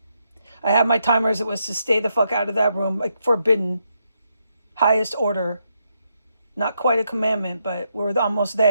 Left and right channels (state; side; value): inverted; both; correlation -0.80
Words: I have my timers. It was to stay the fuck out of that room, like forbidden, highest order. Not quite a commandment, but we're almost